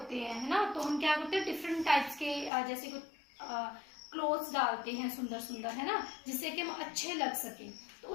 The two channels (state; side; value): drops out; right; at 2.5 s